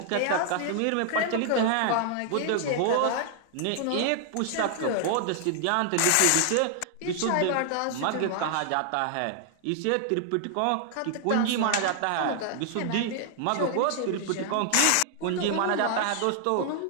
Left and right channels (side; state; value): both; different; correlation 0.00